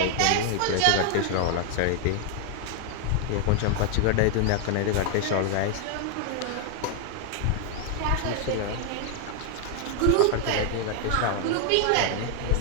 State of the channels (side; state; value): both; different; correlation 0.01